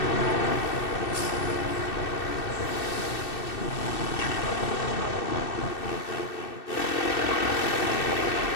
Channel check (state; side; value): late; right; 2.6 ms